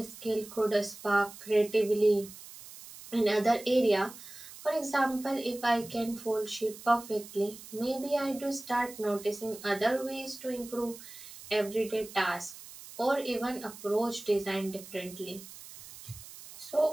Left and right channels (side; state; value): right; noise; hiss, 16 dB below the sound